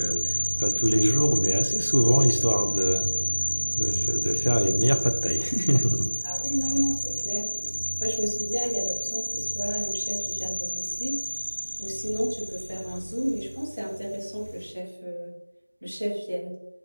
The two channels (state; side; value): inverted; both; correlation -1.00